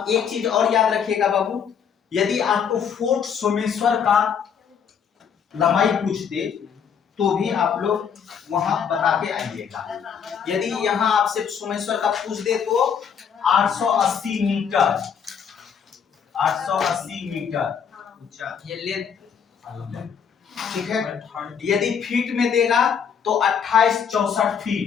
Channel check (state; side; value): quieter; right; 7.3 dB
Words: एक चीज और याद रखिएगा बाबू, यदि आपको फोर्ट सोमेश्वर का लंबाई पूछ दे तो भी आप लोग वहां बता के आइएगा। यदि यहाँ आपसे सोमेश्वर का पूछ दे तो 880 मीटर, 880 मीटर ऊंचा ये लेंथ। ठीक है। यदि फीट में देगा तो